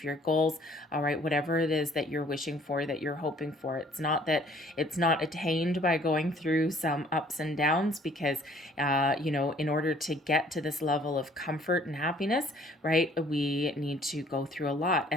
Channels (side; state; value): both; normal; correlation 0.58